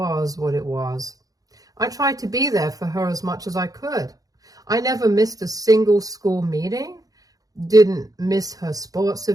what it was. I tried to be there for her as much as I could. I never missed a single school meeting, didn't miss her sports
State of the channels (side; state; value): left; late; 0.17 ms